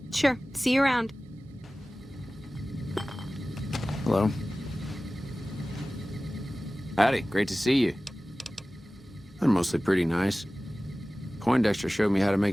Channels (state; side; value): normal; both; correlation 0.97